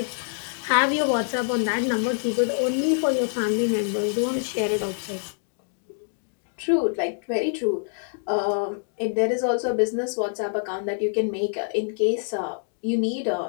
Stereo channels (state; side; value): silent; right; digital silence